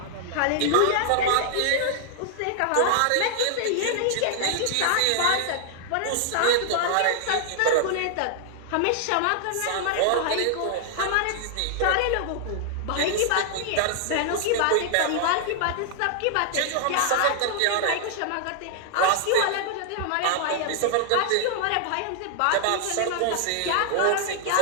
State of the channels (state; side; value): different; both; correlation -0.01